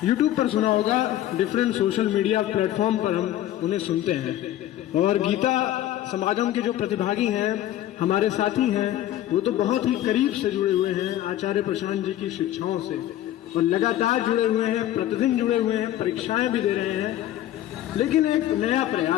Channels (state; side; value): quieter; right; 13.0 dB